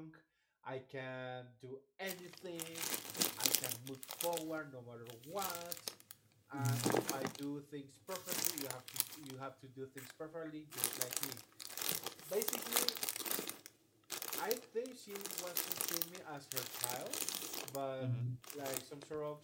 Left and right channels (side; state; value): both; identical; correlation 1.00